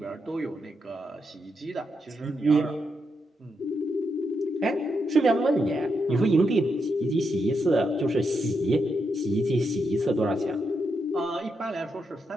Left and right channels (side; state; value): both; normal; correlation 0.83